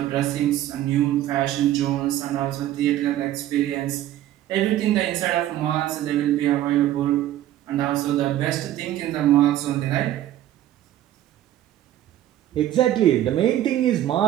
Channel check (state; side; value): quieter; left; 13.0 dB